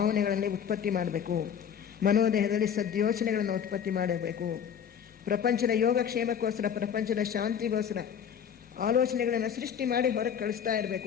ಉತ್ಪತ್ತಿ ಮಾಡಬೇಕು. ಮನೋದೇಹದಲ್ಲಿ ಸದ್ಯೋಚನೆಗಳನ್ನು ಉತ್ಪತ್ತಿ ಮಾಡಬೇಕು. ಪ್ರಪಂಚದ ಯೋಗಕ್ಷೇಮಕ್ಕೋಸ್ಕರ, ಪ್ರಪಂಚದ ಶಾಂತಿಗೋಸ್ಕರ ಆಲೋಚನೆಗಳನ್ನು ಸೃಷ್ಟಿ ಮಾಡಿ ಹೊರಗೆ ಕಳಿಸ್ತಾ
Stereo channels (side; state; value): right; quieter; 8.2 dB